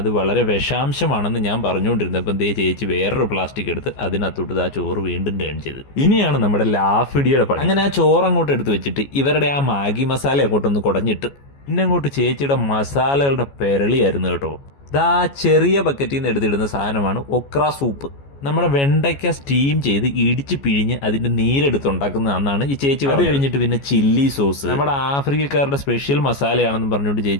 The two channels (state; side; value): late; right; 14 ms